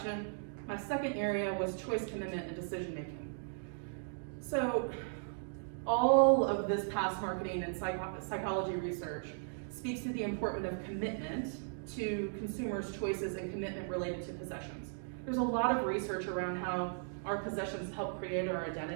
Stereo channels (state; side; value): silent; left; digital silence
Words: My second area was choice, commitment, and decision making. So all of this past marketing and psychology research speaks to the importance of commitment to consumers' choices and commitment related to possessions. There's a lot of research around how our possessions help create our